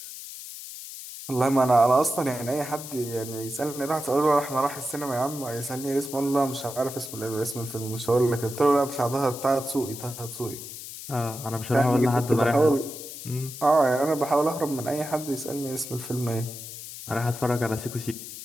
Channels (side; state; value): left; noise; hiss, 11 dB below the sound